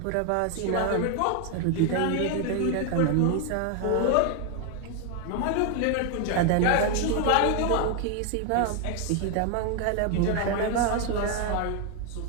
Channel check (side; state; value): both; different; correlation 0.01